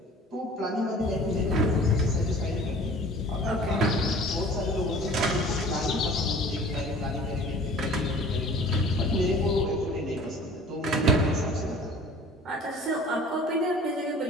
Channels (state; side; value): normal; both; correlation 0.46